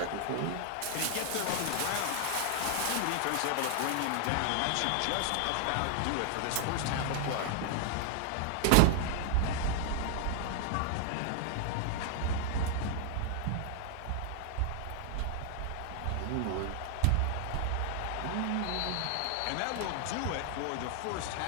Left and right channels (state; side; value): different; both; correlation -0.01